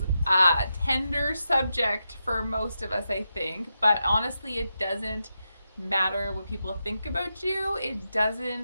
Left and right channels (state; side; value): inverted; both; correlation -0.87